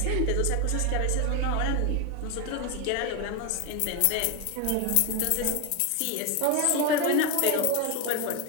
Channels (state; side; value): different; both; correlation 0.01